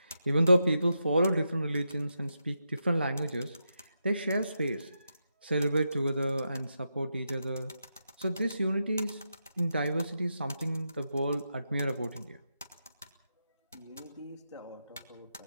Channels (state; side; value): inverted; both; correlation -0.86